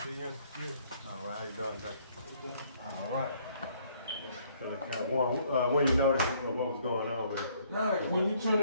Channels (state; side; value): inverted; both; correlation -0.64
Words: unit? Yeah. All right, how you doing today? All right. So like kind of warm. When you notice what was going on with it? No, when you